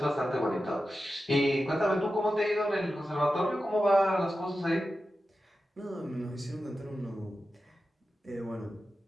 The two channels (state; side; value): normal; both; correlation 0.92